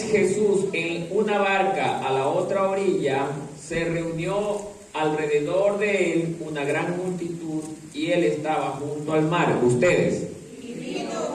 Jesús en una barca a la otra orilla, se reunió alrededor de él una gran multitud y él estaba junto al mar. Ustedes. Y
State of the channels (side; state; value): both; identical; correlation 1.00